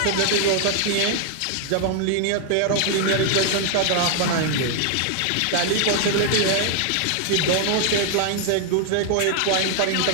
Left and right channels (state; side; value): different; both; correlation 0.00